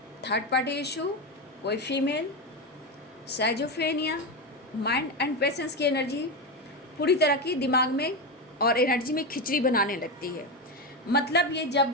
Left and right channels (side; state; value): both; normal; correlation 0.14